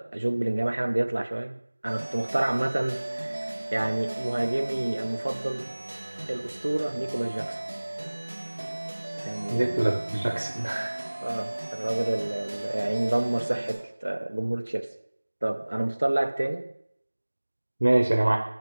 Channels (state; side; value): inverted; both; correlation -1.00